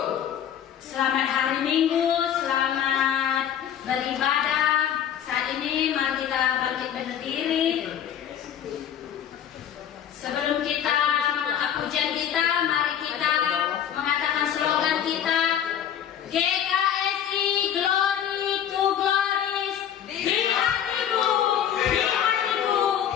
Selamat hari Minggu, selamat beribadah. Saat ini mari kita bangkit berdiri. Sebelum kita mengangkat pujian kita, mari kita mengatakan slogan kita, GKSI Glory to Glories. Di hatimu, di hatimu,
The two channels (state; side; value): quieter; right; 9.6 dB